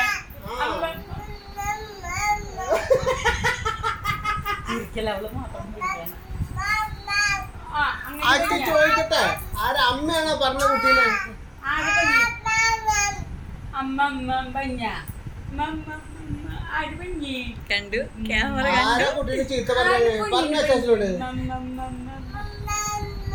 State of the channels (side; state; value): both; identical; correlation 1.00